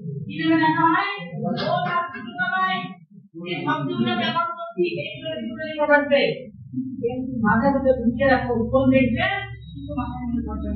কি নামে ডাকা হয়? গোলা। কি করা হয়? এই শব্দগুলো ব্যবহার করছি এইগুলো ভিতরে থাকবে। মাথার মধ্যে ঢুকে রাখো, কোন দেখবে কিন্তু মাথার মধ্যে পড়বে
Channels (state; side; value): identical; both; correlation 1.00